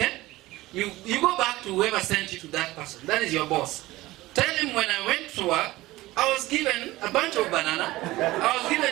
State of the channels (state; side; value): quieter; left; 18.2 dB